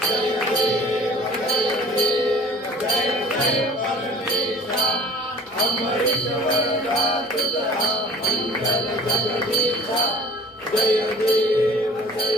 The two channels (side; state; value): both; normal; correlation 0.48